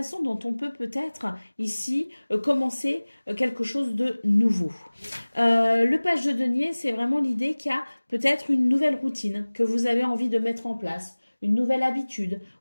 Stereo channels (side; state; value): both; inverted; correlation -1.00